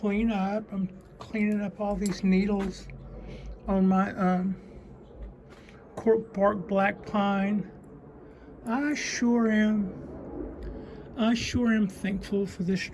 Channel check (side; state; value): both; identical; correlation 1.00